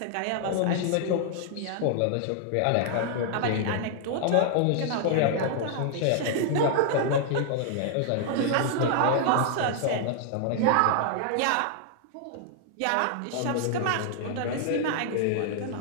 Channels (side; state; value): both; different; correlation -0.01